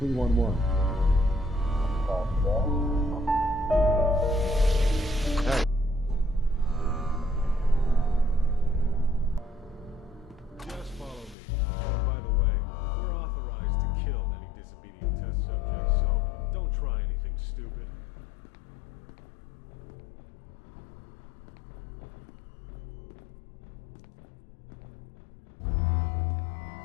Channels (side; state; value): right; drops out; at 11.4 s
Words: Hey. Just follow me. By the way, we're authorized to kill any disobedient test subjects, so don't try anything stupid.